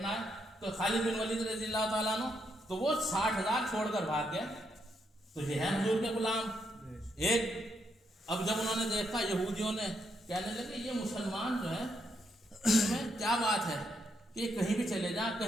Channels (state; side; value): normal; both; correlation 0.78